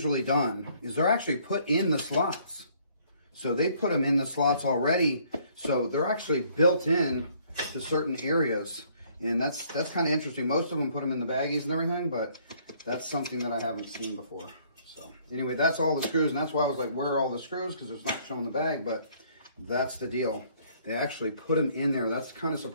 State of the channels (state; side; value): inverted; both; correlation -0.62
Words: done, is they're actually put in the slots. So they put them in the slots already. So they're actually built in to certain areas. And that's kind of interesting. Most of them put them in the baggies and everything, but that's something that I haven't seen before. So anyway, that's all the screws. And that's why I was like, where are all the screws? Because it's not showing the bag, but that's the deal. They actually put them in there. That's kind of